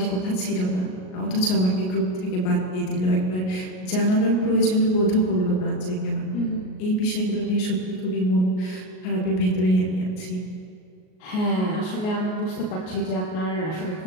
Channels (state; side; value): late; right; 38 ms